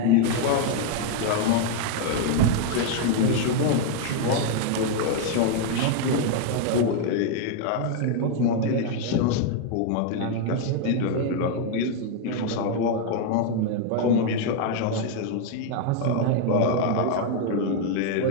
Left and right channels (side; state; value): both; different; correlation 0.00